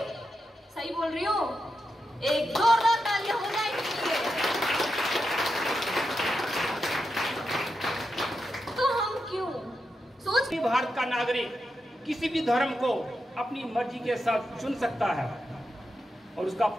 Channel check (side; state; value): both; normal; correlation 0.87